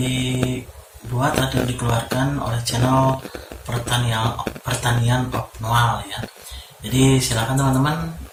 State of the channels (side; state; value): both; identical; correlation 1.00